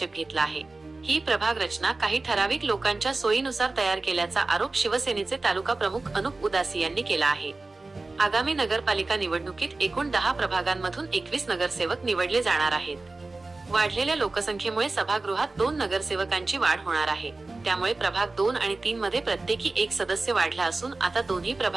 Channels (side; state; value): left; quieter; 3.3 dB